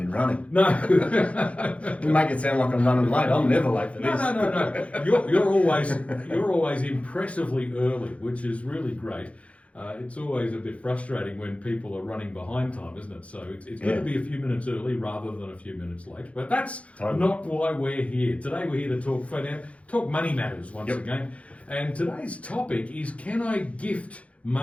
running. No. You make it sound like I'm running late. I'm never late for this. No. You're always impressively early, which is really great. It's always a bit frustrating when people are running behind time, isn't it? So it's good to be a few minutes early rather than a few minutes late. But that's not why we're here. Today we're here to talk money matters once again. And today's topic is, can I gift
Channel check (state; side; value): late; right; 0.064 ms